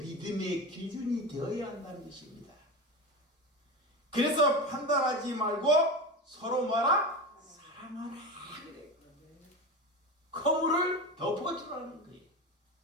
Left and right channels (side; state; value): both; normal; correlation 0.24